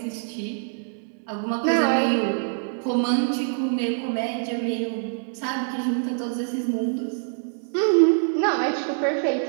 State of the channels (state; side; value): silent; left; 62 dB below the other